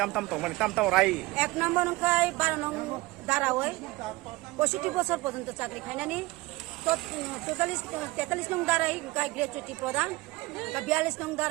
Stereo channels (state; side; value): quieter; left; 21.4 dB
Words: tam tong man tam rai এক নম্বর নংখাই 12 নং দারাওই 65 বছর পর্যন্ত চাকরি খাইনানি 43 নং দারাই গাই গ্র্যাচুইটি প্রদান 42 নং